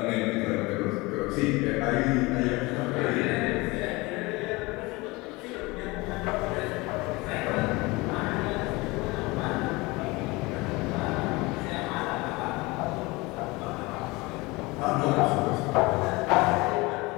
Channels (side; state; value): right; quieter; 23.4 dB